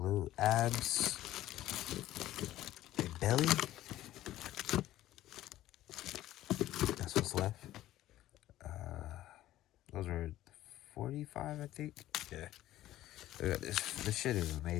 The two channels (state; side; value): quieter; right; 14.4 dB